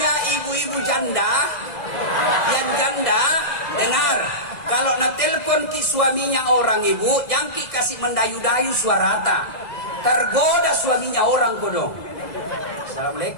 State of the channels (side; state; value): right; late; 2.0 ms